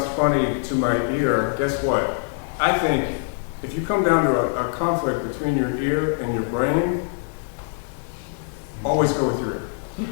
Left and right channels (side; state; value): right; silent; 56 dB below the other